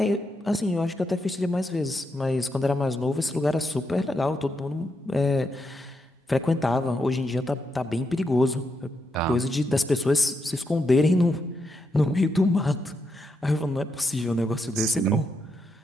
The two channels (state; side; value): normal; both; correlation 0.82